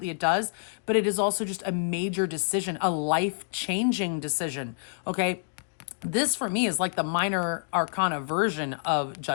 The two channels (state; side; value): silent; right; digital silence